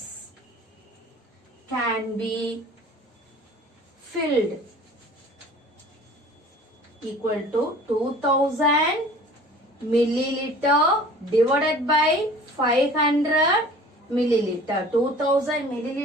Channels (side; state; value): both; normal; correlation 0.46